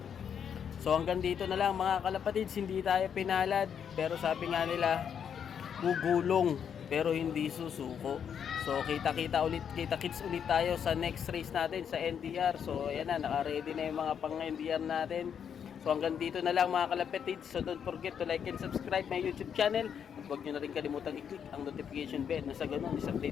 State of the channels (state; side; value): quieter; right; 7.9 dB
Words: So hanggang dito na lang mga kalapatids, hindi tayo pinalad. Pero sabi nga nila, gugulong pero hindi susuko. So kita-kits ulit tayo sa next race natin sa NDR. So ayan na, naka-ready na yung mga pang-NDR natin. So hanggang dito na lang mga kalapatids. So don't forget to like and subscribe my YouTube channel. At huwag nyo na rin kalimutang i-click ang notification bell na sa ganun is